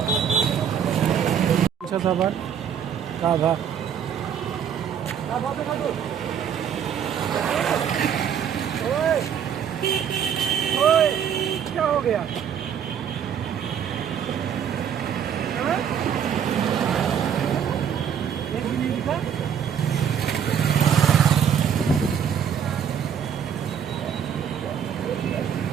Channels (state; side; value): quieter; left; 8.3 dB